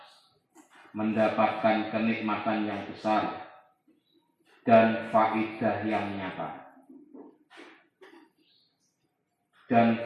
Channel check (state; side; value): identical; both; correlation 1.00